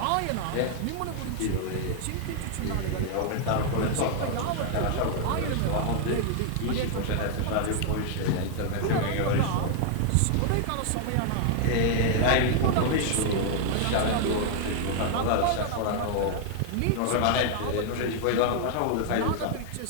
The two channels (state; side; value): different; both; correlation 0.00